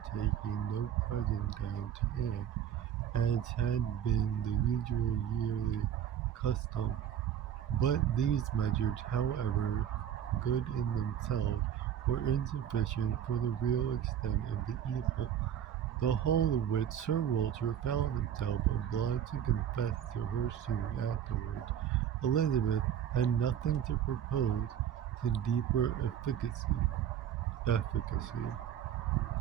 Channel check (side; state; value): left; quieter; 9.7 dB